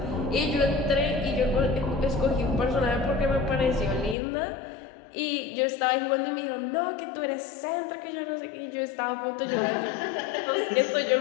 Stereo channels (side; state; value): right; drops out; at 4.2 s